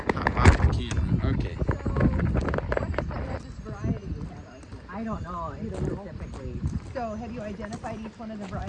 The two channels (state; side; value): identical; both; correlation 1.00